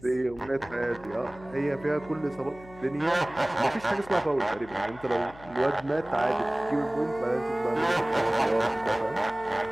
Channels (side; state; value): left; noise; hum, 20 dB below the sound